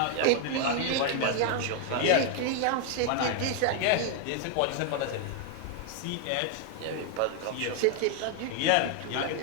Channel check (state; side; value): different; both; correlation 0.00